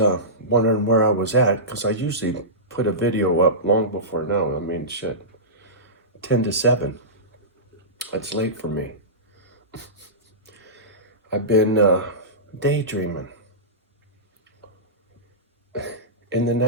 wondering where I was at, because I usually put a video up long before now. I mean, shit, 10 to 7. That's late for me. I've been daydreaming in the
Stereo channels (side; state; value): both; normal; correlation -0.19